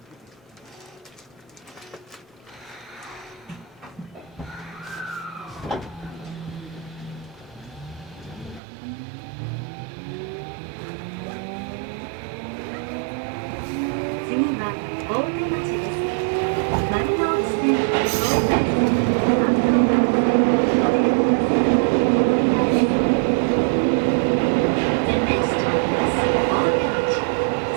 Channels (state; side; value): drops out; left; at 8.6 s